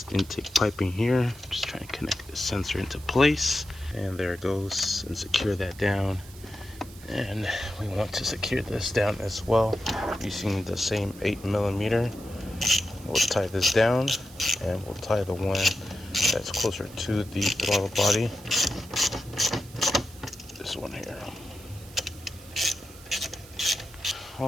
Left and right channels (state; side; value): noise; right; hiss, 20 dB below the sound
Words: intake piping here. Just trying to connect the sensor into place, and there it goes, and secure that down. And we want to secure this down as well using the same 8mm. We'll tie this down, and we'll tie the one that's closer to the throttle body. This one here.